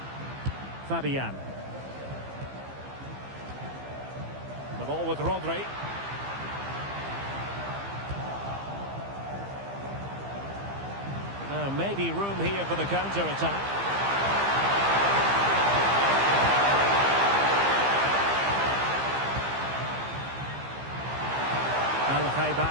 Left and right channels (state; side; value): late; left; 15 ms